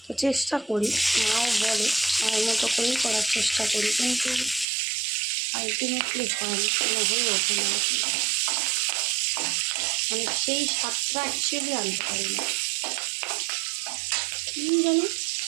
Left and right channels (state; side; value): drops out; left; at 4.7 s